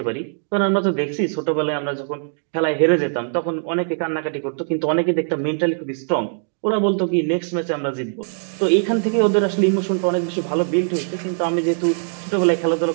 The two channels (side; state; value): left; silent; digital silence